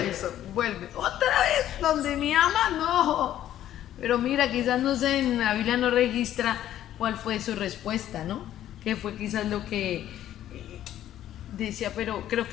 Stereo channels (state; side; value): quieter; right; 12.0 dB